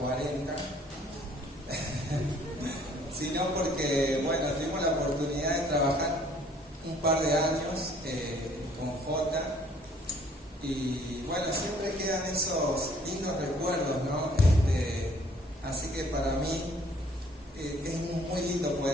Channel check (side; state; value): both; normal; correlation 0.59